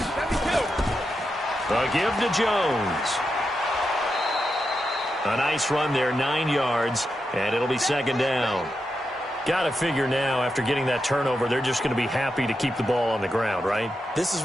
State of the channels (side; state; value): both; normal; correlation 0.87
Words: A give to Jones. A nice run there, 9 yards, and it'll be 2nd down. Got to figure now, after getting that turnover, they're just going to be happy to keep the ball on the ground, right? This is